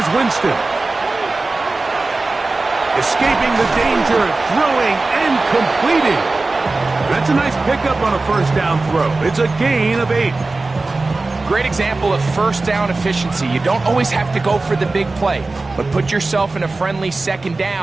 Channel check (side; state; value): left; quieter; 3.4 dB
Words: Winston. Escaping the danger, throwing and completing. That's a nice pickup on a first down throw. It's a gain of 8. Great example of first down efficiency. You don't always have to go for the big play, but put yourself in a friendly second